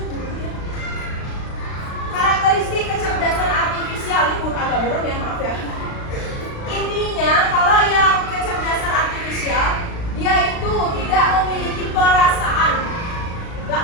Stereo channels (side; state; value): right; late; 36 ms